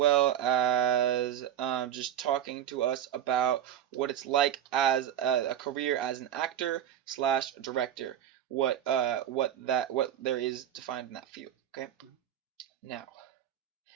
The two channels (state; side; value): quieter; left; 10.5 dB